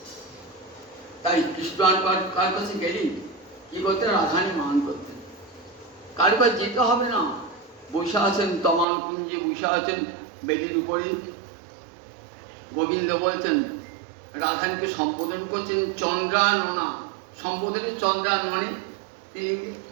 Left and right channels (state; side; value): drops out; left; at 8.8 s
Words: তাই কৃষ্ণ কার কাছে গেলি কি করতেন? রাধারানী মান করতেন। কার কাছে যেতে হবে না, বসে আছেন তমাল কুঞ্জে, বসে আছেন বেদির উপরে। গোবিন্দ বলছেন, রাধারানীকে সম্বোধন করছেন চন্দ্রাননা, সম্বোধনে চন্দ্রাননে। তিনি